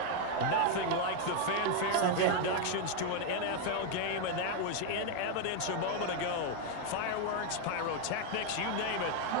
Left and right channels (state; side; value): different; both; correlation 0.01